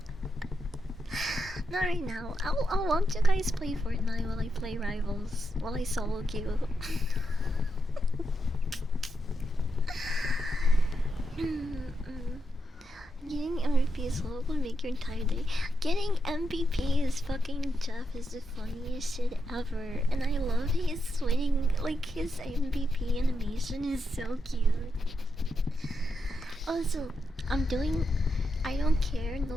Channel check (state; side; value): normal; both; correlation 0.84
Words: Not right now. I'll watch you guys play Fortnite while I play Rivals. While I solo queue. Getting MVP is low will make your entire day. Getting MVP is fucking Jeff is the funniest shit ever. And I love his winning, like his MVP animation is so cute. Also, I don't care,